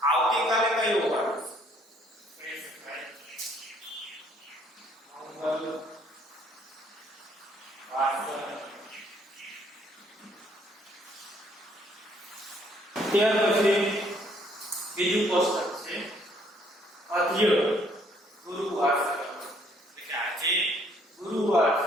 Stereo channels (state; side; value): normal; both; correlation 0.64